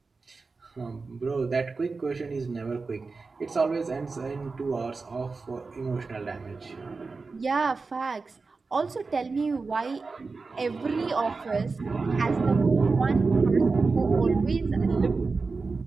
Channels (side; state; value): left; quieter; 4.2 dB